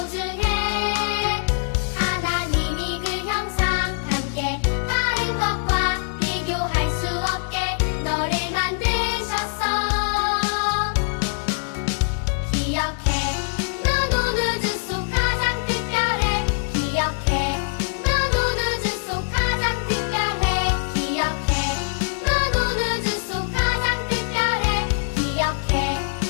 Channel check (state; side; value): silent; right; digital silence